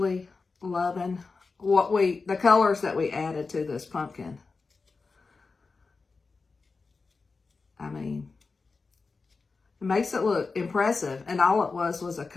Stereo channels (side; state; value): right; quieter; 4.3 dB